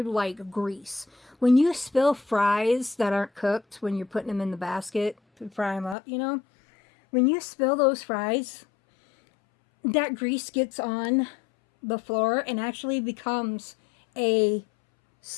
grease. When you spill fries that aren't cooked, when you're putting them in the basket to fry them up, when you spill those fries, that grease gets on the floor and actually becomes a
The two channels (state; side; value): drops out; right; at 6.0 s